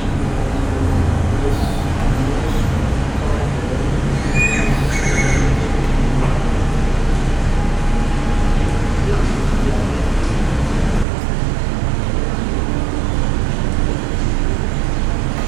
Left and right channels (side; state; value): left; drops out; at 11.1 s